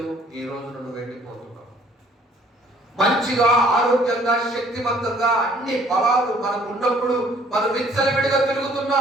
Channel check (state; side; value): normal; both; correlation 0.59